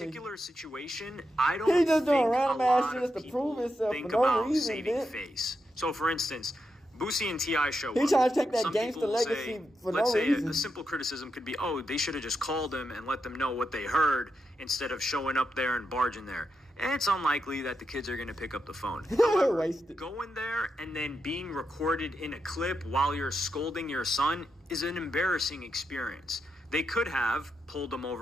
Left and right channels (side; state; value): both; normal; correlation 0.85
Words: situation, I don't He just doing think random a ass lot shit of just to prove people himself think for no about reason, saving man. face. So, for instance, Boosie and T.I. show He up. trying to take that Some gangster people will legacy say, for let's no say reason. a simple criticism could be, they should have just called him and let them know what they heard instead of showing up there and barging there. And it's unlikely that the kids are going to pick up the phone. However, Wasted. going there and then being recorded in a clip while you're scolding your son is an embarrassing experience. They could have pulled him